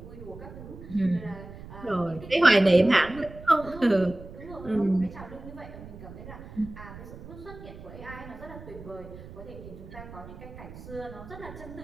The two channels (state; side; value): noise; right; rumble, 15 dB below the sound